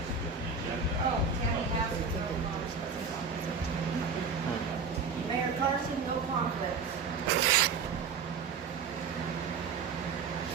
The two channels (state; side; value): quieter; left; 5.3 dB